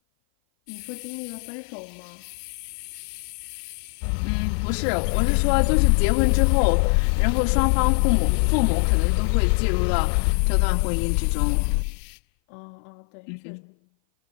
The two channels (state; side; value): silent; right; 58 dB below the other